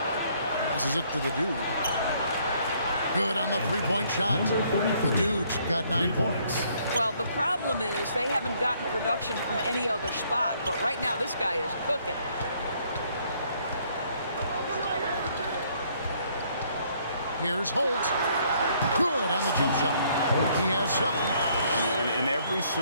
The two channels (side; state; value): both; inverted; correlation -0.66